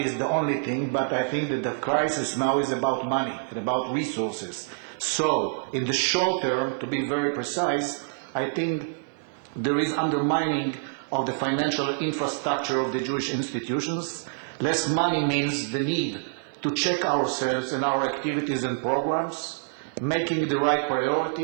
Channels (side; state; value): left; silent; 60 dB below the other